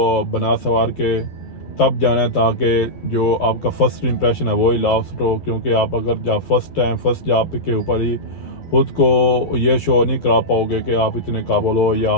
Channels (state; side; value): late; right; 11 ms